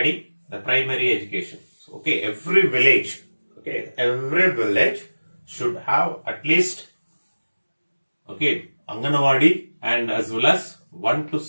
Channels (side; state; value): both; inverted; correlation -1.00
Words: the primary education. So, okay, every village should have at least Anganwadi and as well as 1 to